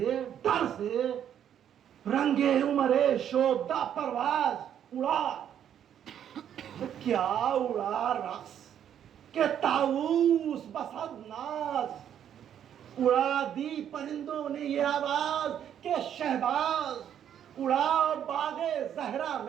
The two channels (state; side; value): quieter; left; 9.6 dB